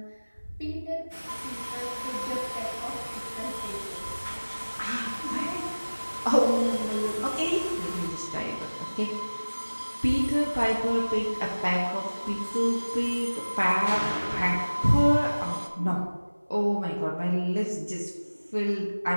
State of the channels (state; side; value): inverted; both; correlation -1.00